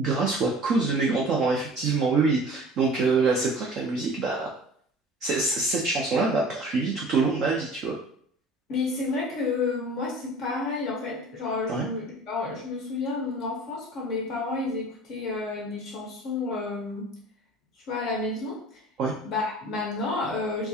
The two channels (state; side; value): normal; both; correlation 0.43